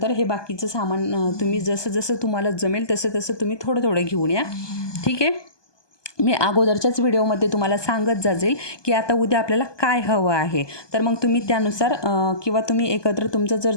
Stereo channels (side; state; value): right; late; 1.2 ms